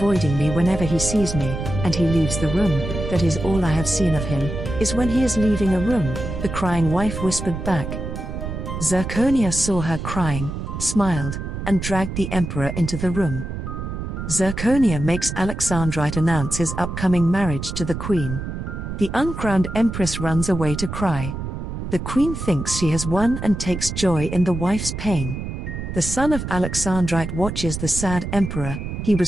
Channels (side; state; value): right; noise; rumble, 6 dB below the sound